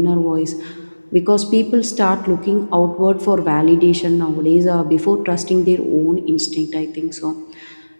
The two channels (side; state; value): both; inverted; correlation -1.00